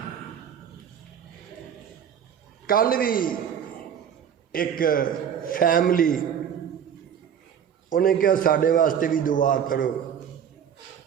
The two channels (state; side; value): quieter; left; 8.5 dB